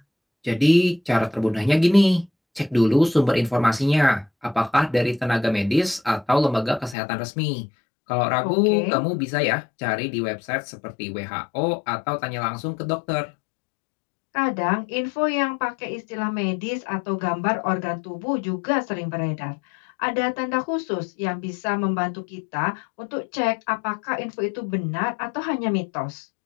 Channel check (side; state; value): right; drops out; at 7.0 s